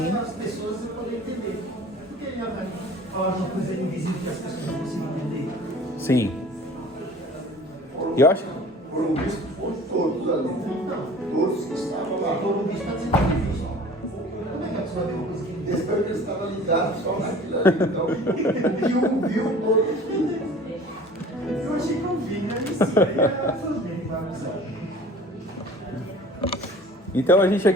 as pessoas poderem entender. Por que falar uma coisa invisível que as pessoas não conseguem entender? Sim. Eu acho. Foram vistos por todos ali. Todos que estavam lá. Foram vistos para ser difícil. Como é que a pessoa vê uma coisa que Desde que estava ligado só naquilo ali. Então, o que viu todos. eu achei que eu vi, né? Isso aí é tudo bem, vai avisar. Então a gente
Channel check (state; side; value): normal; both; correlation 0.45